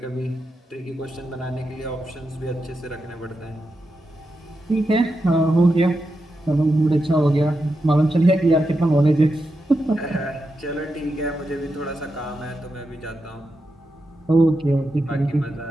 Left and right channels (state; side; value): normal; both; correlation 0.87